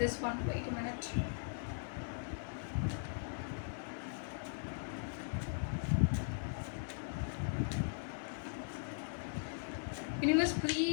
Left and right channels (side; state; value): right; silent; 51 dB below the other